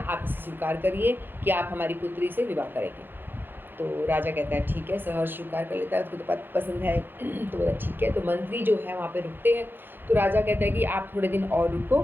आप इसे स्वीकार करिए कि आप हमारी पुत्री से विवाह करेंगे। तो राजा कहता है ठीक है, सहर्ष स्वीकार कर लेता है, उसको तो पसंद है। तो बोला ठीक है। तो मंत्री जो है वहाँ पे रुकते हैं। तो राजा कहता है कि आप थोड़े दिन और रुको,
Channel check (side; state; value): left; late; 0.099 ms